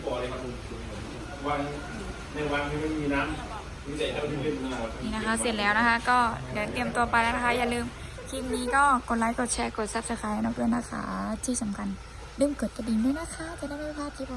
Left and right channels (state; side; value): identical; both; correlation 1.00